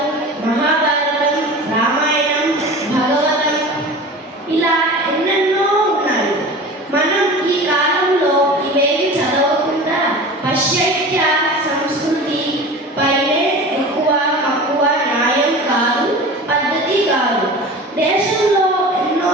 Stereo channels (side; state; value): both; normal; correlation 0.35